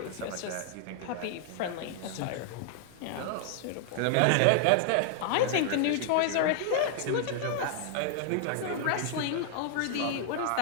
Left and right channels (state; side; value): different; both; correlation -0.01